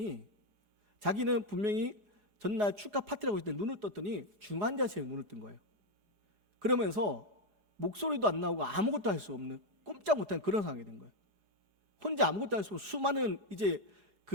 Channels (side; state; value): left; late; 4.8 ms